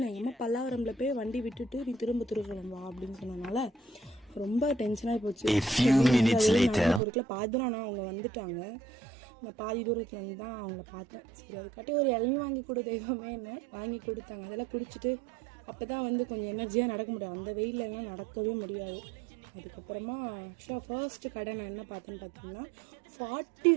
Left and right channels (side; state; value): left; drops out; at 7.0 s